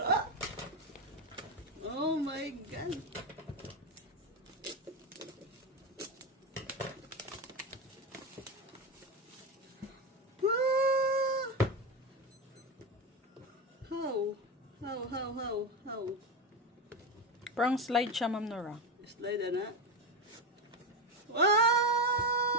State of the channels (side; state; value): both; normal; correlation 0.15